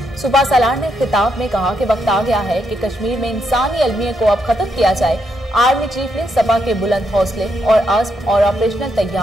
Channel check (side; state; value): both; normal; correlation 0.79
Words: सुबह सलार ने खिताब में कहा कि वक्त आ गया है कि कश्मीर में इंसानी अलमियत को अब खत्म किया जाए। आर्मी चीफ ने सपा के बुलंद हौसले और अज़्म और ऑपरेशनल